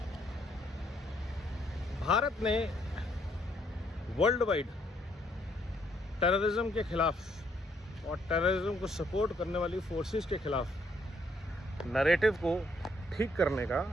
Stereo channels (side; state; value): both; normal; correlation 0.70